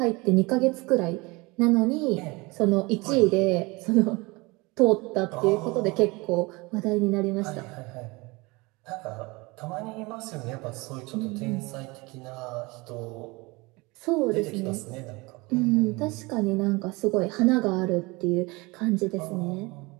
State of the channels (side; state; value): left; quieter; 24.7 dB